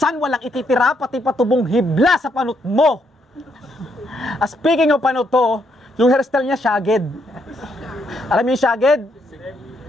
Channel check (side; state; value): both; normal; correlation 0.75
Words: walang ititira, pati patubong hibla sa panot mo. Speaking of panot to, yung hairstyle niya, shagged. Alam mo yung shagged?